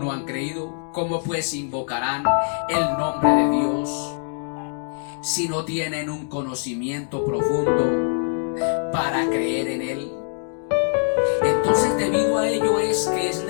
han creído? ¿Cómo pues invocarán el nombre de Dios si no tienen un conocimiento profundo para creer en Él? Entonces, debido a ello es que es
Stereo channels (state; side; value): silent; right; 63 dB below the other